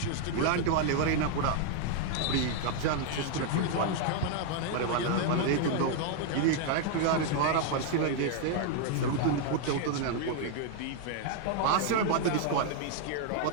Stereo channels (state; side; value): different; both; correlation 0.00